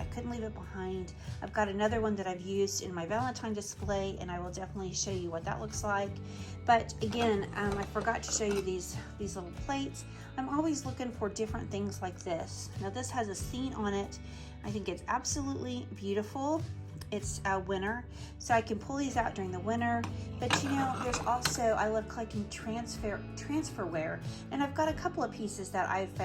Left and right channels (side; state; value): both; identical; correlation 1.00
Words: couldn't leave it behind. I've got another one that I've used in my Valentine display, and I will definitely show you what that looks like. But again, I forgot to show you these little plates. I'm always looking for different things like this. Now this has a scene on it. I think it's absolutely beautiful. It's winter, so I can pull these out during the winter. But you know, there's also, I love collecting transferware, and I've got a couple of pieces that I've